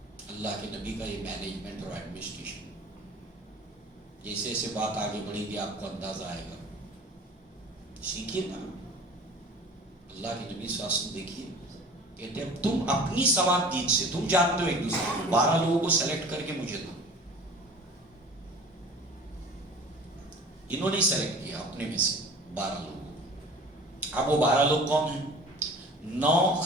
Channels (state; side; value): normal; both; correlation 0.43